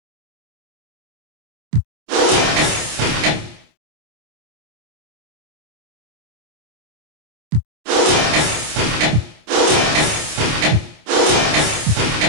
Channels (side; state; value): left; late; 26 ms